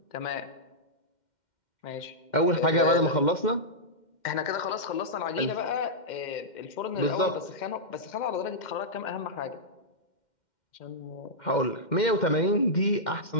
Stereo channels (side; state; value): right; late; 2.1 ms